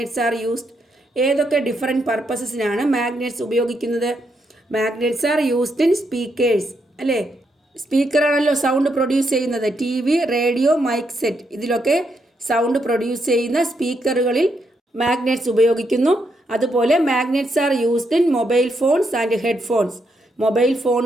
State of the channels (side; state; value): both; normal; correlation 0.79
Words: are used? ഏതൊക്കെ ഡിഫറെൻറ്റ് പർപ്പസസിനാണ് മാഗ്നറ്റ്സ് ഉപയോഗിക്കുന്നത്? Magnets are used in speakers, അല്ലേ? സ്പീക്കറാണല്ലോ സൗണ്ട് പ്രൊഡ്യൂസ് ചെയ്യുന്നത്. TV, റേഡിയോ, മൈക്ക് സെറ്റ് ഇതിലൊക്കെ സൗണ്ട് പ്രൊഡ്യൂസ് ചെയ്യുന്ന സ്പീക്കറുകളിൽ മാഗ്നറ്റ്സ് ഉപയോഗിക്കുന്നു. അതുപോലെ magnets are used in mobile phones and headphones. Mobile